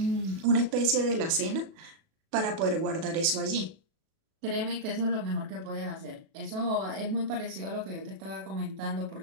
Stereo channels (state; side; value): late; left; 37 ms